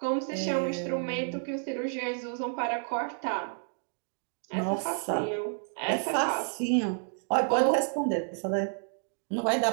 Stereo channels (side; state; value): left; silent; 58 dB below the other